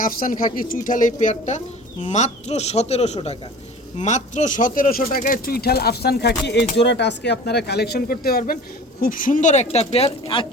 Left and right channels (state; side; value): normal; both; correlation 0.40